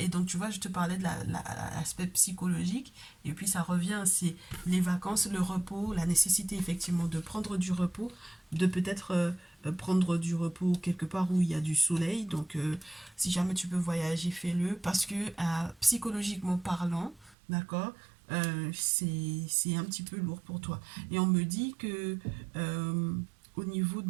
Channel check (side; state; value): left; drops out; at 17.4 s